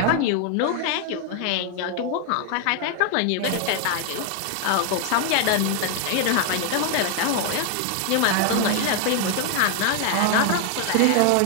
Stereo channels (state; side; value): different; both; correlation 0.00